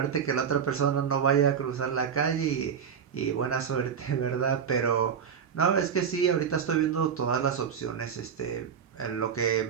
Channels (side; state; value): left; quieter; 7.4 dB